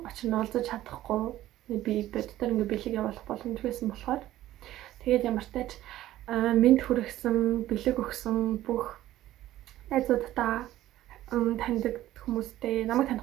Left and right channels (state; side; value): quieter; left; 14.3 dB